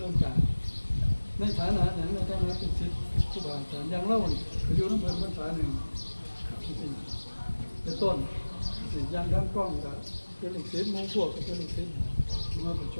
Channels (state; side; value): inverted; both; correlation -1.00